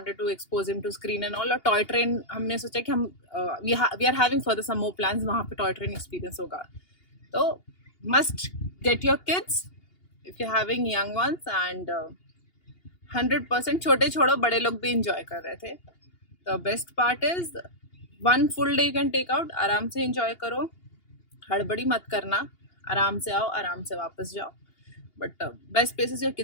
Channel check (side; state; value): right; late; 2.8 ms